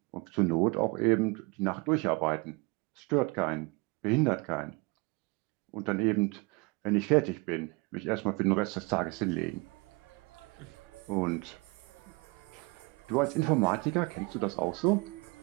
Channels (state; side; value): quieter; left; 27.5 dB